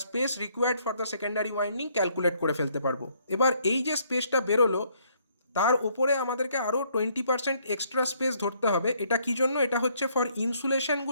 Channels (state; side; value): inverted; both; correlation -0.68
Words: space required for the secondary winding calculate করে ফেলতে পারবো। এবার এই যে স্পেসটা বেরোলো তার উপরে আমাদেরকে আরও 20% এক্সট্রা স্পেস ধরতে হবে। এটা কী জন্য? এটা হচ্ছে ফর